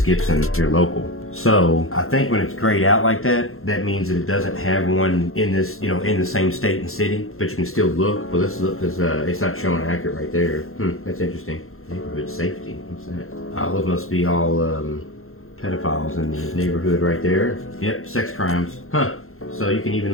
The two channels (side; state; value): right; late; 0.62 ms